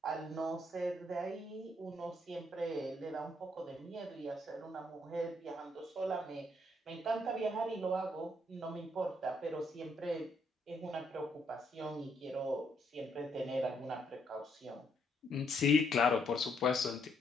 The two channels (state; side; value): normal; both; correlation 0.72